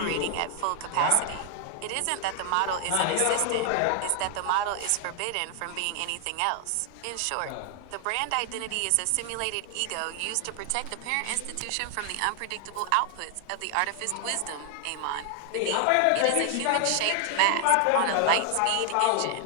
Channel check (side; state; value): both; different; correlation 0.00